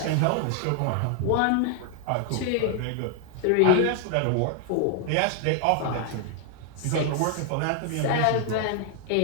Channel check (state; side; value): different; both; correlation 0.00